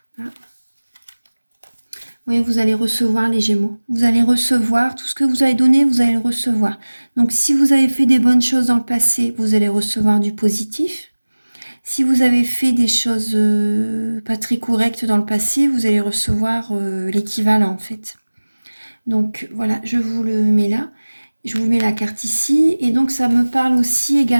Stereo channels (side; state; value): both; inverted; correlation -1.00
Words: Oui, vous allez recevoir les Gémeaux. Vous allez recevoir tout ce que vous avez donné, vous allez le recevoir. Donc, si vous avez fait des bonnes choses dans le passé, vous allez recevoir du positif. Si vous avez fait des choses pas très correctes dans le passé, vous allez recevoir l'équivalent en fait. Donc voilà, je vous le mets là. Je vous mets la carte ici. Et donc ça me parle aussi